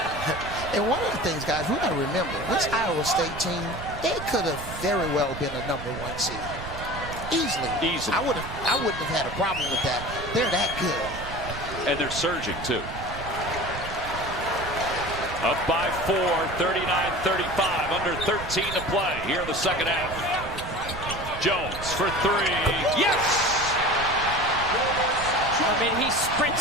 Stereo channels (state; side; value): noise; right; rumble, 10 dB below the sound